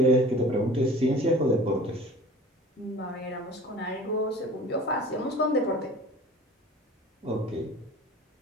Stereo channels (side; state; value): both; normal; correlation 0.43